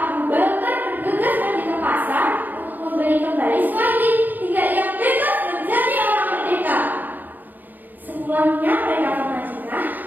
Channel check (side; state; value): left; late; 0.086 ms